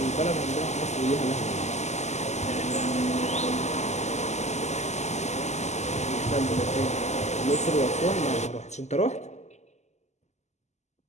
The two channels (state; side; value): late; right; 0.33 ms